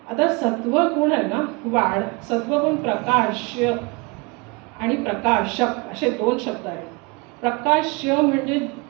आता सत्वगुण आहे ना सत्वगुण प्रकाश्य आणि प्रकाशक असे 2 शब्द आहेत. प्रकाश्य म्हणजे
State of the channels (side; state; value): left; quieter; 28.1 dB